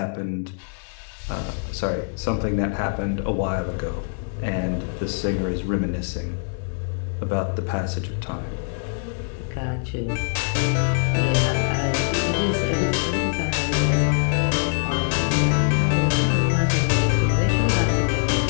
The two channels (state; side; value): silent; right; digital silence